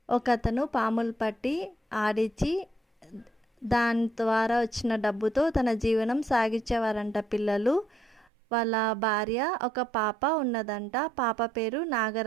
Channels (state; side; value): drops out; left; at 8.3 s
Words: ఒకతను పాములు పట్టి ఆడించి దాని ద్వారా వచ్చిన డబ్బుతో తన జీవనం సాగించేవారంట పిల్లలు. వాళ్ళ భార్య ఒక పాప ఉన్నదంట. పాప పేరు